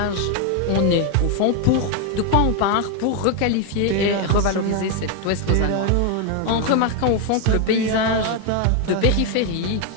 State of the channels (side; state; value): both; different; correlation 0.01